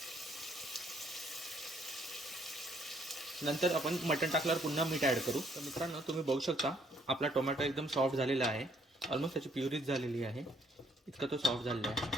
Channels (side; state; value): both; normal; correlation 0.66